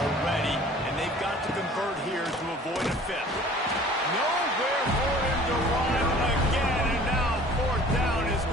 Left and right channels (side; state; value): both; normal; correlation 0.49